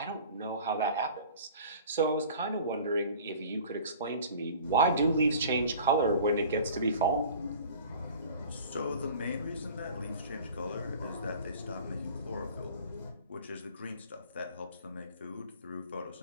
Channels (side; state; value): both; inverted; correlation -0.44